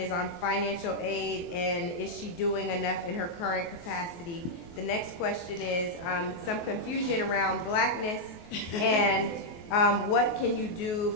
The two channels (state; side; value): late; right; 24 ms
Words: on financial aid, and is she doing enough in her current capacity? The next question is some confusion around blackness and what can you do